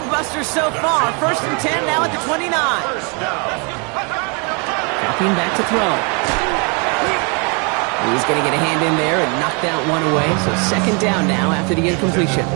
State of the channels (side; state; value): left; quieter; 34.2 dB